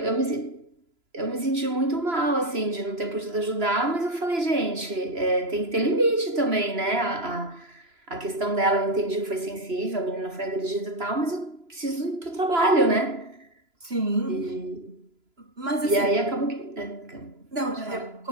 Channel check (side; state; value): left; late; 3.0 ms